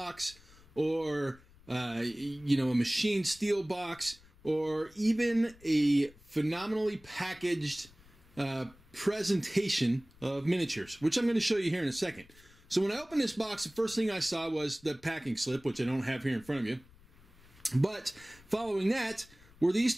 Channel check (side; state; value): left; noise; rumble, 25 dB below the sound